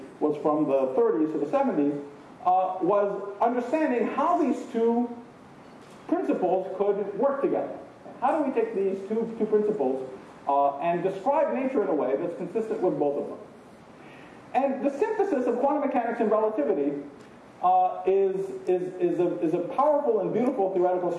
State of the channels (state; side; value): identical; both; correlation 1.00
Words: was from the 30s to the 70s, was understanding how these two principles could work together. How do we take these two principles and describe nature in a way that's consistent with both of them? And the synthesis of quantum mechanics and relativity is a powerful and beautiful theoretical